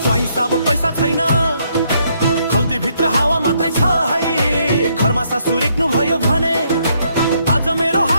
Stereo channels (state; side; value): inverted; both; correlation -0.72